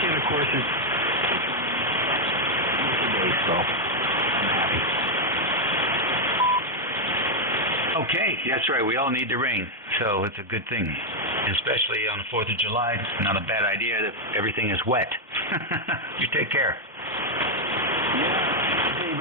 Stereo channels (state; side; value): normal; both; correlation 0.00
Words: of course, it's today, so I'm happy. Okay, that's right. We all need the rain, so it's a good thing. Especially on the 4th of July, it's not a bad idea that everything is wet. You take care. Yeah, Dave,